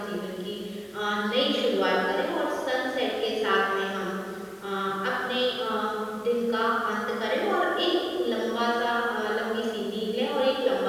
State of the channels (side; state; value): both; identical; correlation 1.00